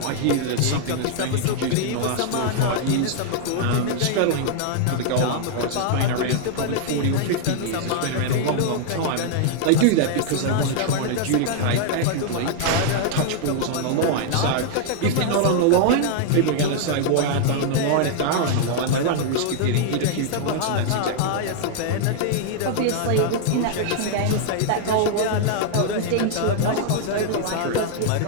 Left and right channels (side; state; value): both; different; correlation -0.01